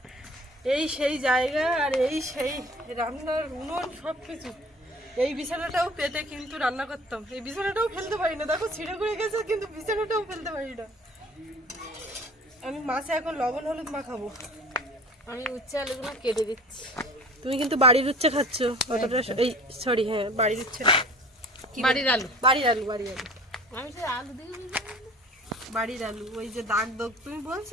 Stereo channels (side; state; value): both; normal; correlation 0.45